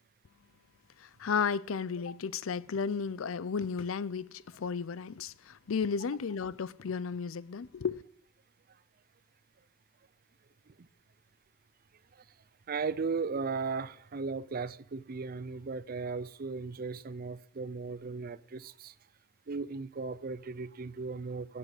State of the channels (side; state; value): both; normal; correlation 0.08